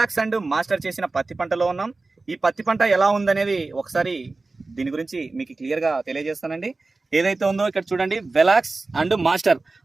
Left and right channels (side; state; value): left; quieter; 3.5 dB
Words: అండ్ మాస్టర్ చేసిన పత్తి పంటలో ఉన్నాం. ఈ పత్తి పంట ఎలా ఉందనేది ఒకసారి దీని గురించి మీకు క్లియర్గా తెలియజేస్తానండి. ఏదైతే ఉందో ఇక్కడ చూడండి, వెలాక్స్ అండ్ మాస్టర్